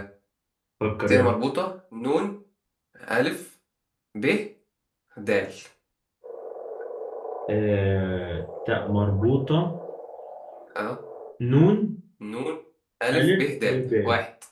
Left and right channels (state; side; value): identical; both; correlation 1.00